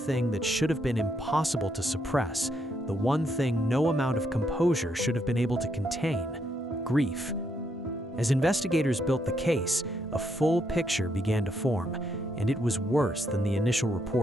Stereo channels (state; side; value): normal; both; correlation 0.76